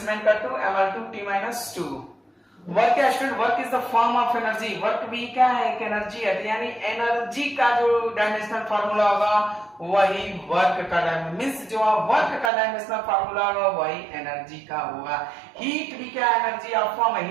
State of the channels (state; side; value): drops out; left; at 12.5 s